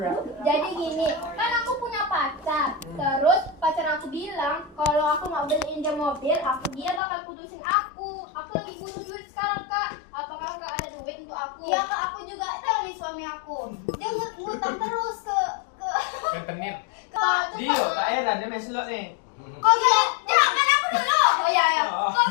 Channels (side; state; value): right; drops out; at 7.0 s